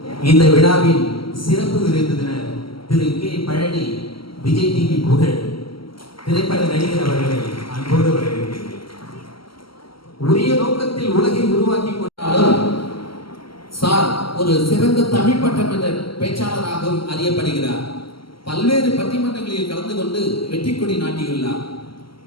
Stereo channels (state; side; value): late; right; 0.74 ms